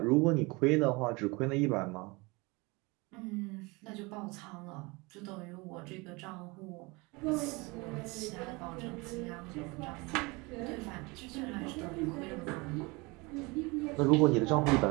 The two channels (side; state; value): left; quieter; 25.9 dB